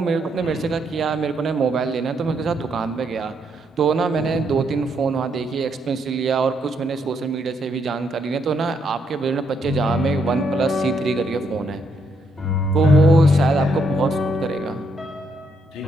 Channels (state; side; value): normal; both; correlation 0.75